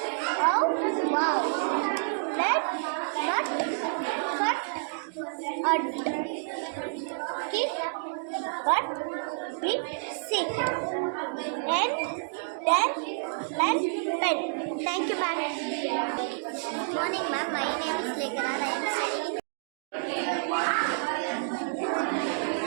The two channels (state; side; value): silent; left; digital silence